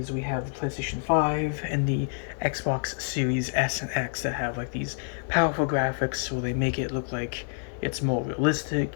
we have the PlayStation 5 and the Xbox Series S and X that have like these powerful graphics where they make it look like it's more realistic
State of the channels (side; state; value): right; silent; 60 dB below the other